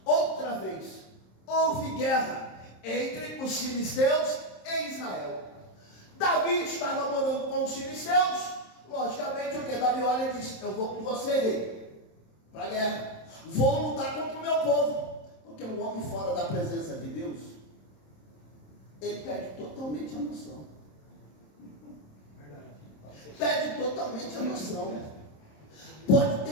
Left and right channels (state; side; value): late; right; 27 ms